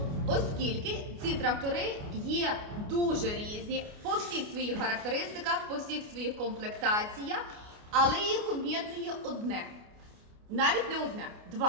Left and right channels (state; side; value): late; left; 29 ms